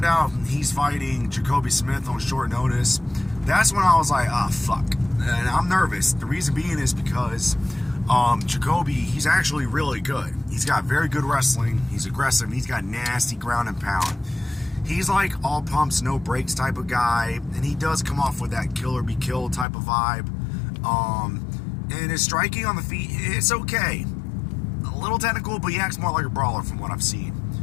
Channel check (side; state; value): right; drops out; at 19.7 s